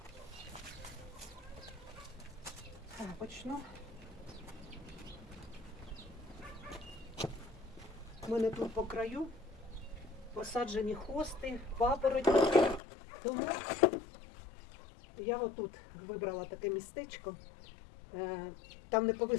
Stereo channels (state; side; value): drops out; right; at 12.8 s